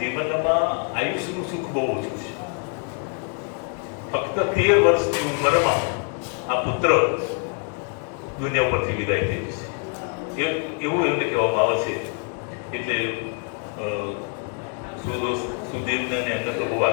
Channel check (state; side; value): quieter; right; 39.9 dB